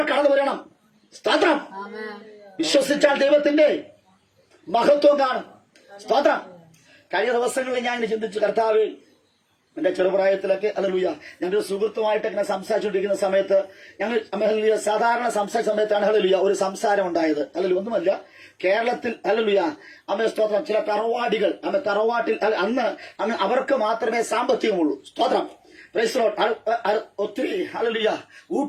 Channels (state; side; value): identical; both; correlation 1.00